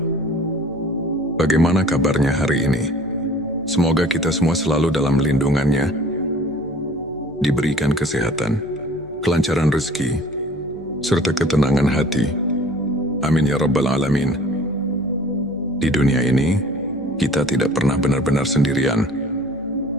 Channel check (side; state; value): left; noise; hum, 23 dB below the sound